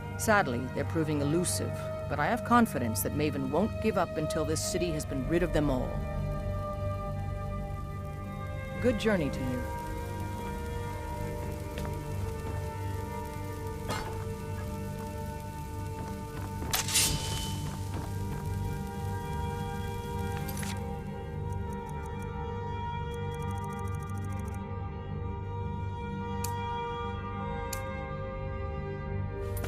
Sadly, they're proving elusive, but I have confidence that Maven won't give up until this city has been rid of them all. Good journey to you.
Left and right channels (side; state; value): both; identical; correlation 1.00